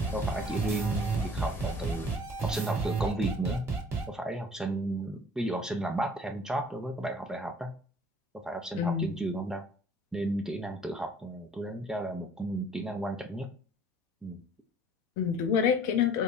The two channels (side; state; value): both; normal; correlation 0.52